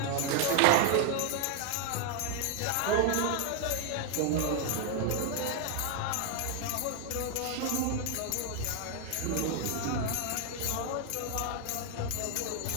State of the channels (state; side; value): different; both; correlation 0.00